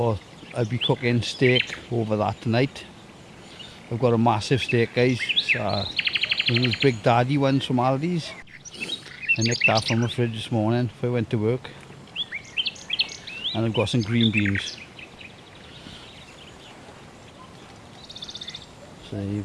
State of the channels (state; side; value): identical; both; correlation 1.00